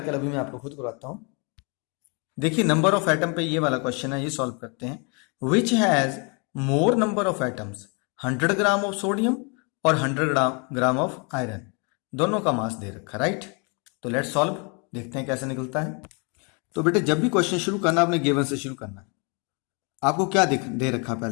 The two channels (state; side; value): quieter; right; 33.7 dB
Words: अभी मैं आपको खुद करवाता हूं। देखिए नंबर ऑफ एटम पे ये वाला क्वेश्चन है, ये सॉल्व करते हैं। Which has more number of atoms, 100 gram of sodium और 100 ग्राम ऑफ आयरन, दोनों का मास दे रखा, राइट। तो लेट्स सॉल्व, देखते हैं कैसे निकलता है। तो बेटे जब भी क्वेश्चन शुरू करना आपने गिवन से शुरू करना है। आपको क्या दे रखा,